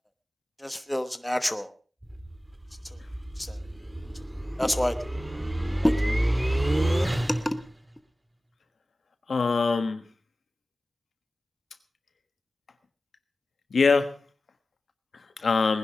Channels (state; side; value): normal; both; correlation 0.96